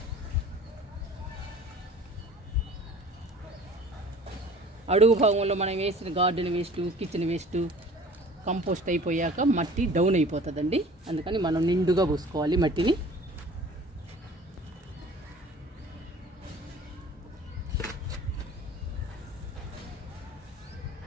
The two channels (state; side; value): normal; both; correlation 0.47